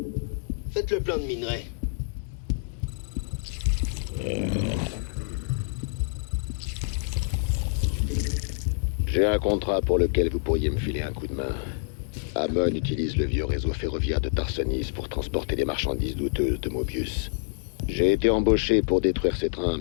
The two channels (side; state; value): right; silent; digital silence